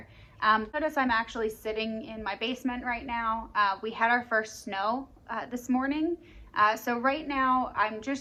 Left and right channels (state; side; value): identical; both; correlation 1.00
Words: Notice I'm actually sitting in my basement right now. We had our first snow this morning. So right now I'm